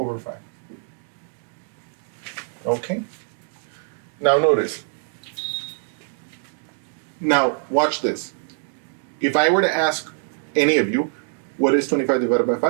Okay? Now notice. Now watch this. If I were to ask any of you, what is 25 divided by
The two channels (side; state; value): left; silent; 63 dB below the other